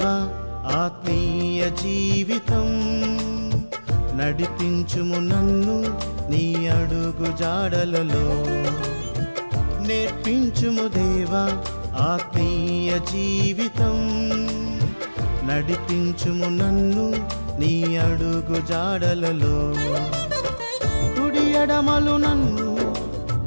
ఆత్మీయ జీవితం, నడిపించుము నన్ను నీ అడుగు జాడలలో. నేర్పించుము దేవా ఆత్మీయ జీవితం, నడిపించుము నన్ను నీ అడుగు జాడలలో. కుడి ఎడమలు నన్ను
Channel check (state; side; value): inverted; both; correlation -1.00